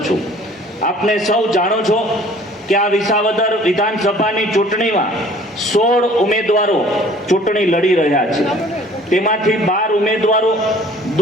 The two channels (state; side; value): normal; both; correlation 0.52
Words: છું. આપને સૌ જાણો છો કે આ વિસાવદર વિધાનસભાની ચૂંટણીમાં 16 ઉમેદવારો ચૂંટણી લડી રહ્યા છે. તેમાંથી 12 ઉમેદવારો